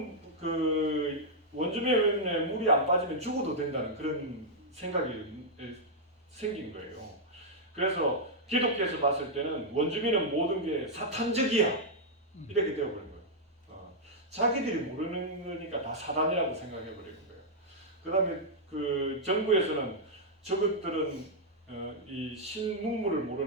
그 원주민의 물이 안 빠지면 죽어도 된다는 그런 생각이 생긴 거예요. 그래서 기독교에서 봤을 때는 원주민은 모든 게 사탄적이야 이렇게 되어버린 거예요. 자기들이 모르는 거니까 다 사단이라고 생각해버리는 거예요. 그 다음에 그 정부에서는 저것들은 이 신문물을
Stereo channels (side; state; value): both; normal; correlation -0.05